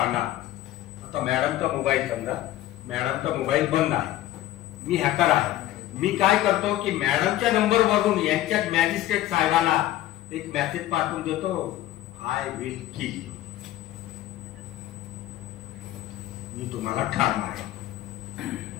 आता मॅडमचा मोबाईल समजा, मॅडमचा मोबाईल बंद आहे, मी हॅकर आहे, मी काय करतो की मॅडमच्या नंबरवरून यांच्या मॅजिस्ट्रेट साहेबाला एक मेसेज पाठवून देतो, आय विल किल यू, मी तुम्हाला ठार मारेन.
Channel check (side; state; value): right; quieter; 14.4 dB